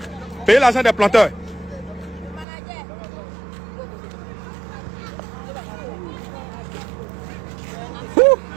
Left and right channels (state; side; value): drops out; left; at 2.5 s